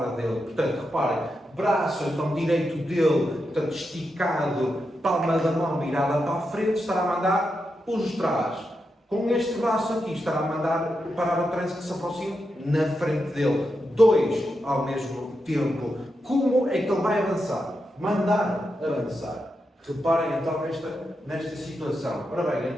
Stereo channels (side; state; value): both; normal; correlation 0.86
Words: dele. Portanto, reparem, braço então direito dele, portanto, esticado, palma da mão virada para a frente, estará a mandar os de trás. Com este braço aqui estará a mandar parar o trânsito que se aproxima na frente dele. Dois ao mesmo tempo. Como é que ele vai avançar? Mandar avançar. Reparem então nesta situação. Ora bem,